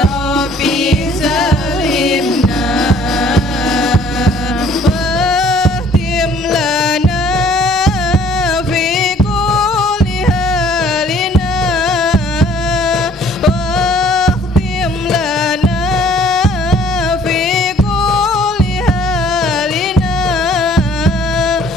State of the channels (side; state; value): both; normal; correlation 0.57